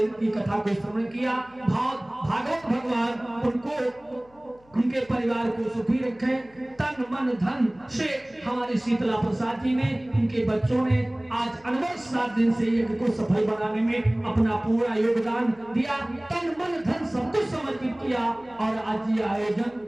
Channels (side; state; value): left; noise; hum, 30 dB below the sound